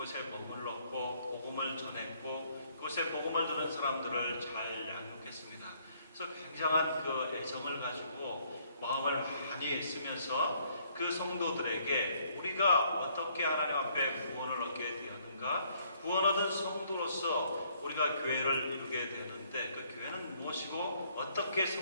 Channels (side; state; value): both; inverted; correlation -0.66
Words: 머물렀고 복음을 전했고 그곳에 복음을 듣는 사람들을 잘 양육했습니다. 그래서 굉장한 애정을 가지고 마음을 많이 쓰면서 그 성도들에게 우리가 어떻게 하나님 앞에 구원을 얻게 되었는가, 구원 얻은 성도로서 우리가 교회를 이루게 되는데 그 교회는 무엇이고 어떻게